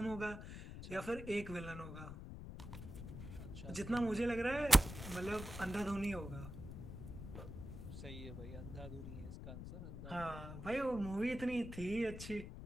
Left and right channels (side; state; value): left; noise; rumble, 9 dB below the sound